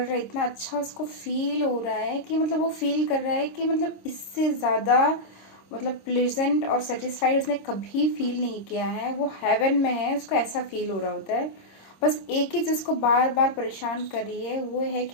हैं, इतना अच्छा उसको फील हो रहा है कि मतलब वो फील कर रहा है कि मतलब इससे ज़्यादा मतलब प्लेजेंट और सेटिस्फाइड उसने कभी फील नहीं किया है। वो हेवन में है, उसको ऐसा फील हो रहा होता है। बस एक ही चीज़ को बार बार परेशान कर रही है, वो है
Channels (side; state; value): right; late; 26 ms